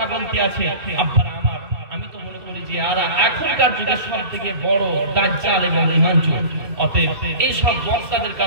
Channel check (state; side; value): late; left; 2.7 ms